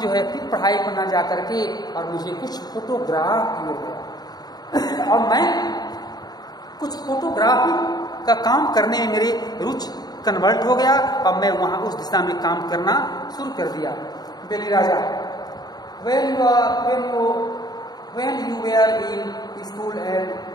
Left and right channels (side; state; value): right; late; 0.19 ms